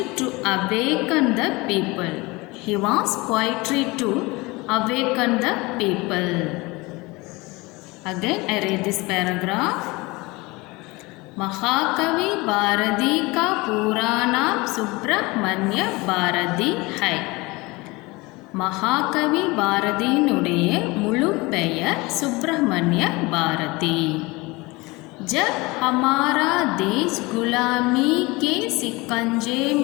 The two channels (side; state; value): right; quieter; 23.5 dB